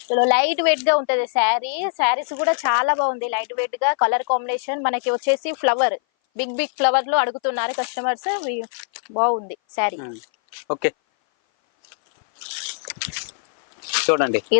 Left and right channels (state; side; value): silent; right; 58 dB below the other